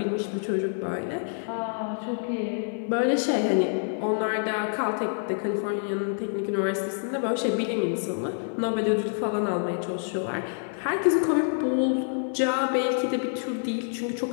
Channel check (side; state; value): right; silent; 55 dB below the other